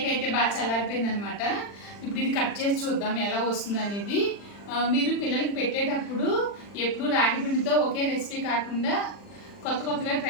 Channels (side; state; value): right; late; 40 ms